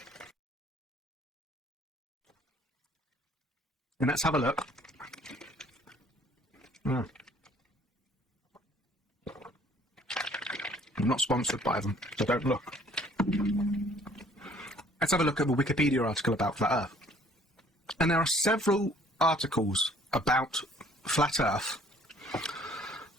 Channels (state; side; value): normal; both; correlation 0.58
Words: And let's have a look. I'm not sponsored by them, so don't look. Let's have a look at the Wikipedia article about Flat Earth. And there are several articles about Flat Earth